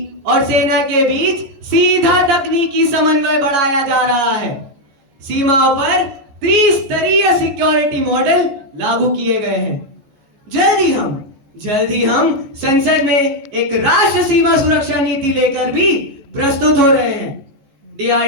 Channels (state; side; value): late; left; 14 ms